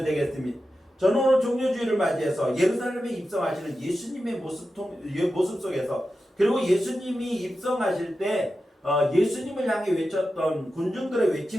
되겠습니다. 저는 오늘 종료주의를 맞이해서 예루살렘에 입성하시는 예수님의 모습 속에서, 그리고 예수님이 입성하실 때 예수님을 향해 외쳤던 군중들의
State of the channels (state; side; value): normal; both; correlation 0.91